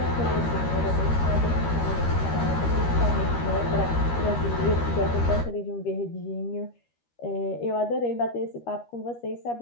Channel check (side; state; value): right; late; 13 ms